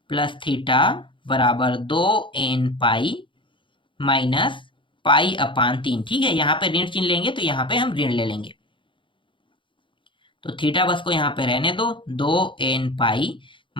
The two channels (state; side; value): late; right; 0.24 ms